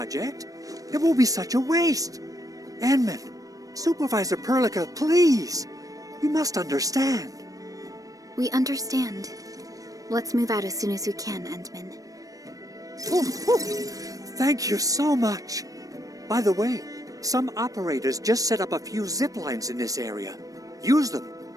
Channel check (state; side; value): late; left; 0.17 ms